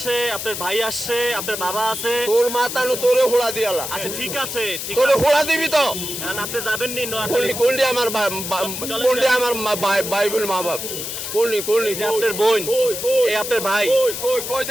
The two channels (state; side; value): noise; left; hiss, 6 dB below the sound